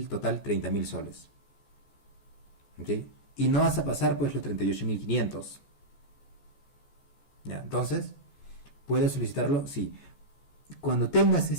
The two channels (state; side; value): late; right; 14 ms